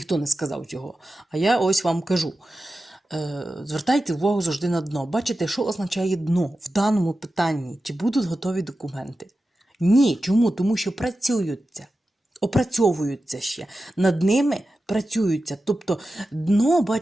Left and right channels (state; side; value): normal; both; correlation 0.93